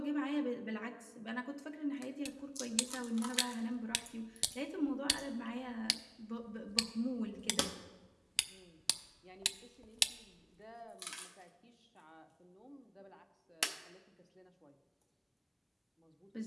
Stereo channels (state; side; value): identical; both; correlation 1.00